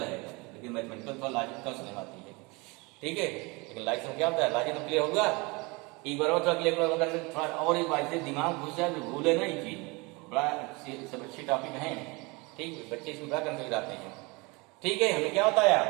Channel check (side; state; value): left; quieter; 26.6 dB